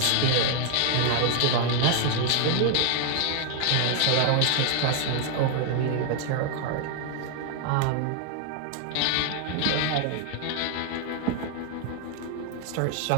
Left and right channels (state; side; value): different; both; correlation 0.00